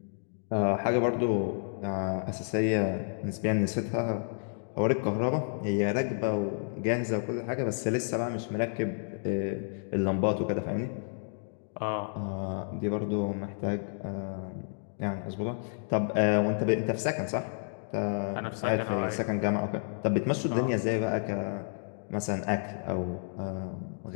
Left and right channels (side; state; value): right; silent; digital silence